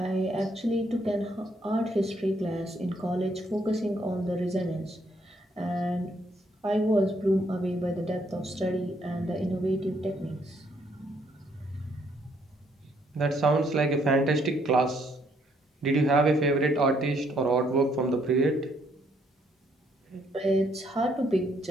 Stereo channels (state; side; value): normal; both; correlation 0.70